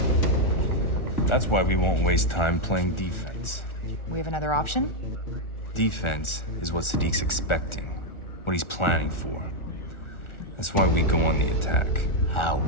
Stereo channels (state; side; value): late; right; 1.4 ms